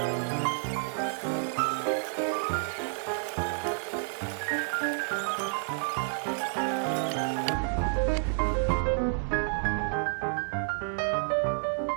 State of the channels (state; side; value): silent; left; 58 dB below the other